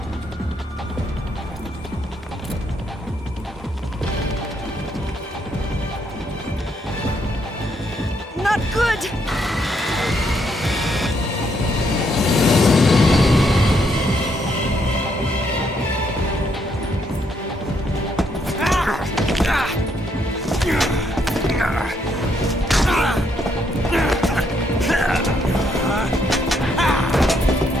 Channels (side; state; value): both; normal; correlation 0.74